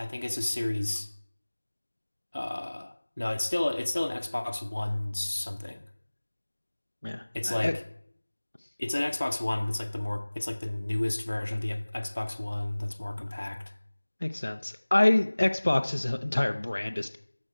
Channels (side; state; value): both; inverted; correlation -1.00